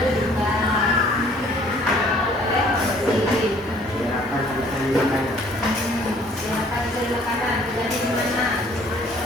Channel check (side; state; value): both; normal; correlation 0.57